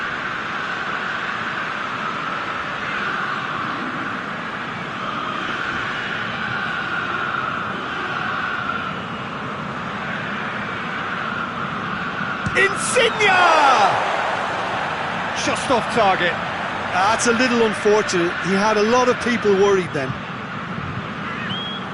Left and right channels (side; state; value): both; identical; correlation 1.00